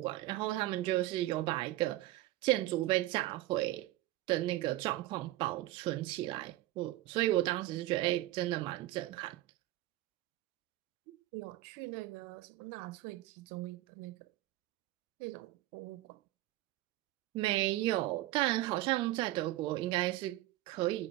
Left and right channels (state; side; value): quieter; left; 16.4 dB